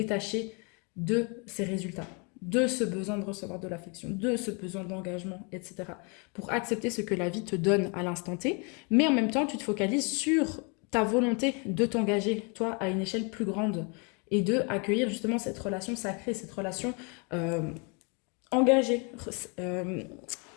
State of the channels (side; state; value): right; quieter; 33.5 dB